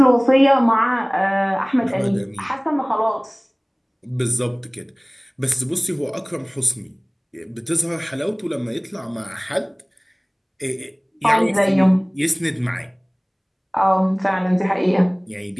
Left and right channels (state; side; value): identical; both; correlation 1.00